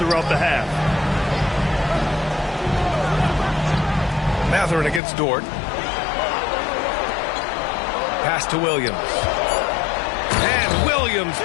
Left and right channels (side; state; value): right; drops out; at 5.0 s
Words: the half. Mathurin against Dort. Pass to Williams. And Williams